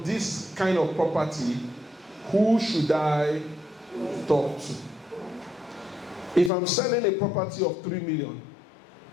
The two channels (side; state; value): right; drops out; at 6.5 s